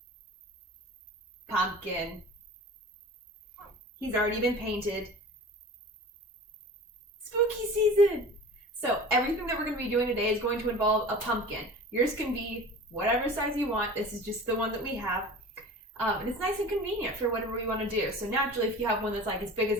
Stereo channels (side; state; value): both; normal; correlation 0.39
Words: Pumpkin. He's already been painted. Spooky season! So, everything that we're going to be doing today is going to involve a pumpkin. Yours can be whatever size you want. This is just the one that we have. And it's nice and convenient for whatever you want to do. So naturally, if you have one that's like as big as